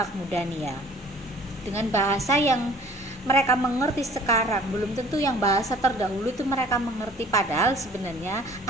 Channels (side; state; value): both; normal; correlation 0.51